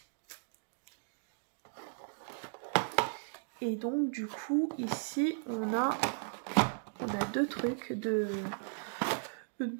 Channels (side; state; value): left; silent; digital silence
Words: Et donc du coup ici on a deux trucs de